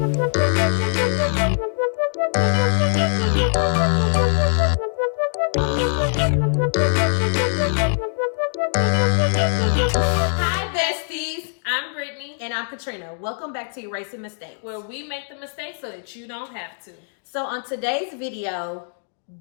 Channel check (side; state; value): right; silent; digital silence